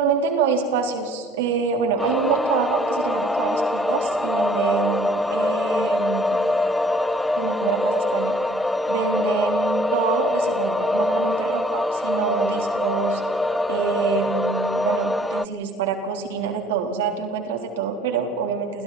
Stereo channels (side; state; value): both; normal; correlation 0.57